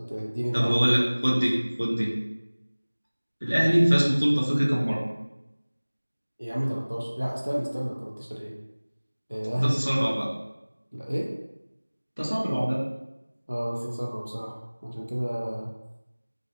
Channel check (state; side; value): inverted; both; correlation -1.00